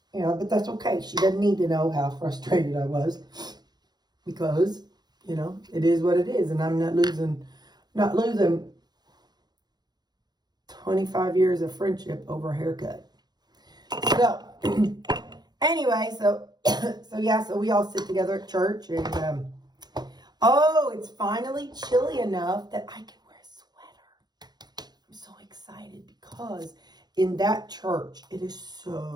but that's okay. She doesn't need to know how frustrated I was. Because, it is what it is. And I'm not losing 25 years of friendship over a haircut. So, anyway, so we all sit together at church. And, it's finally chilly enough that I can wear a sweater. I'm so excited because in that church, it is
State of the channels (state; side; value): late; left; 0.20 ms